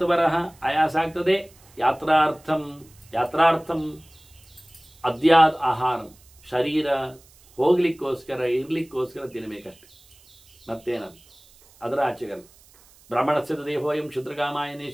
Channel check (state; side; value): noise; right; hiss, 27 dB below the sound